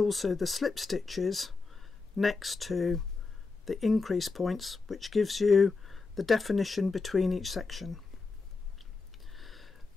the slip stitches next to the increase points, which gives you the definition between each section.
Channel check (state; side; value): quieter; right; 4.2 dB